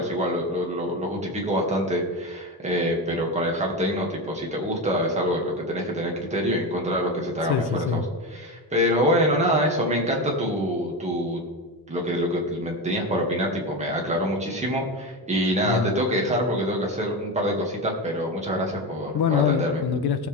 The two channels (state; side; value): normal; both; correlation 0.19